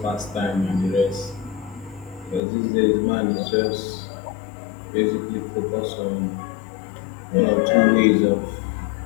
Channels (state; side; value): drops out; right; at 2.4 s